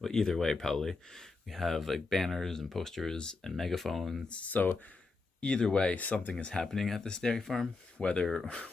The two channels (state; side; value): quieter; right; 3.9 dB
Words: either way, probably we have like banners and posters and megaphones. So either way, something is happening at this dairy farm, whether